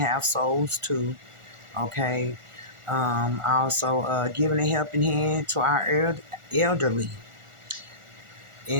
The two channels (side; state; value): left; late; 1.4 ms